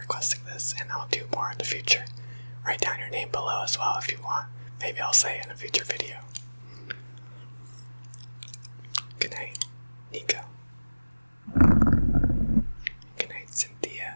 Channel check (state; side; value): inverted; both; correlation -1.00